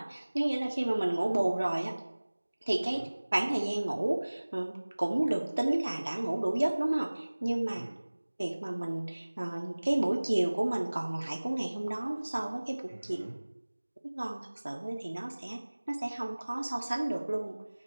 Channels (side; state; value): both; inverted; correlation -1.00